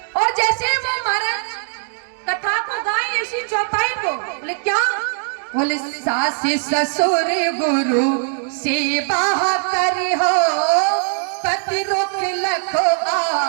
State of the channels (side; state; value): left; silent; digital silence